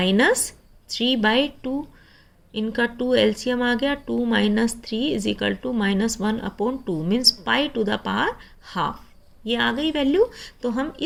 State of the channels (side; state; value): both; identical; correlation 1.00